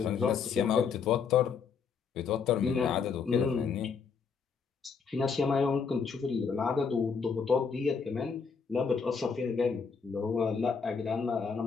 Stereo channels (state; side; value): quieter; right; 5.8 dB